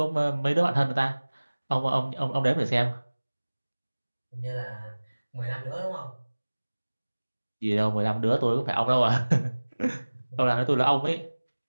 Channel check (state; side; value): inverted; both; correlation -1.00